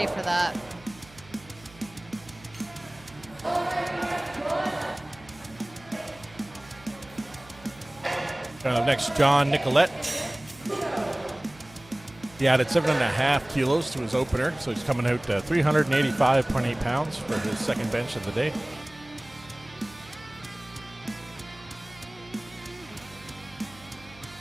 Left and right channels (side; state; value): right; noise; hum, 22 dB below the sound